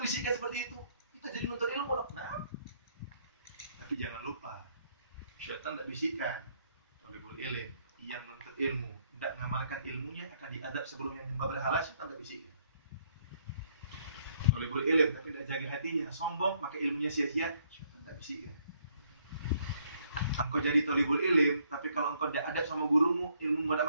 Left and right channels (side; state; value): both; inverted; correlation -0.68